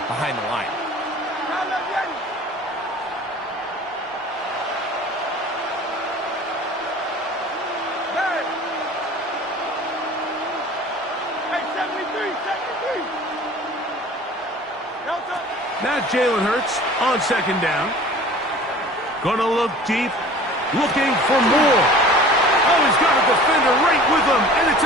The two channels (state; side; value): normal; both; correlation 0.44